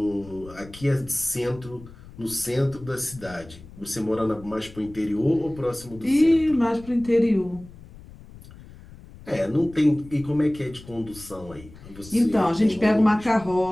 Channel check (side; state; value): left; noise; rumble, 19 dB below the sound